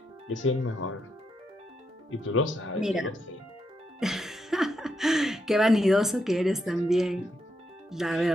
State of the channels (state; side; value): normal; both; correlation 0.81